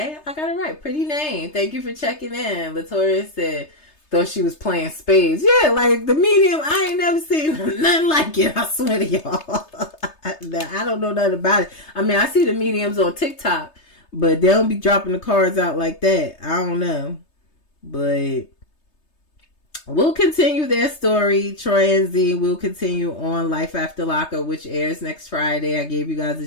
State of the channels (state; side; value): late; right; 3.3 ms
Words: I got it right. Pretty name. Thank you for checking in. Latoya said, though she was playing spades. Yeah, like the medium, I ain't never seen nothing like it. I swear to y'all. I don't know nothing about it. I mean, I see the mediums on TikTok, but they don't be dropping the cards out like that. I don't know. But we'll continue their story. Troy and Z will continue on Life After Lockup, which airs next Friday. I gave you guys